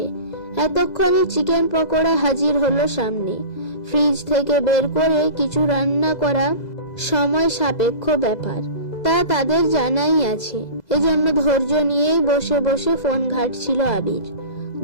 এতক্ষণে চিকেন পকোড়া হাজির হলো সামনে। ফ্রিজ থেকে বের করে কিছু রান্না করা সময় সাপেক্ষ ব্যাপার, তা তাদের জানাই আছে। এজন্য ধৈর্য নিয়েই বসে বসে ফোন ঘাঁটছিল আবির।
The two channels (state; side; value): late; right; 2.0 ms